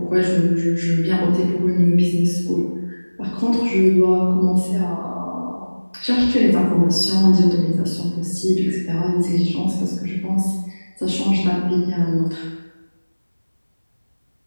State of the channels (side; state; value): both; inverted; correlation -1.00